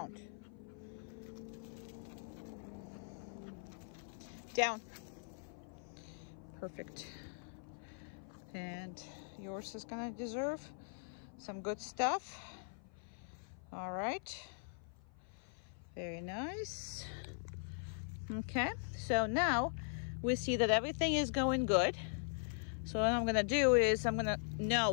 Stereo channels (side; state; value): right; silent; 50 dB below the other